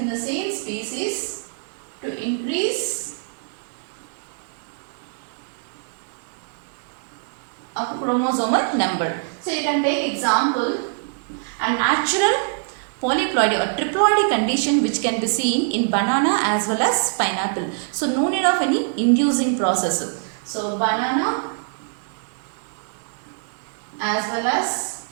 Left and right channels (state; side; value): silent; left; digital silence